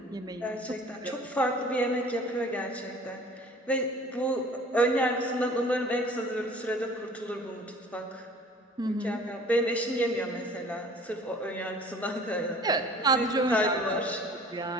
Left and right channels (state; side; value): normal; both; correlation 0.49